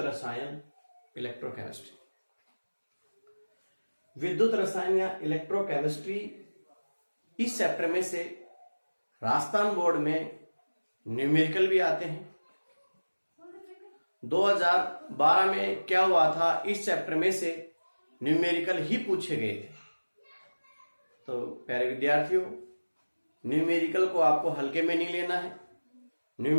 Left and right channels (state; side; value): inverted; both; correlation -1.00